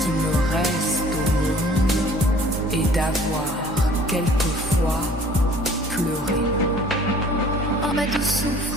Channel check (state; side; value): normal; both; correlation 0.52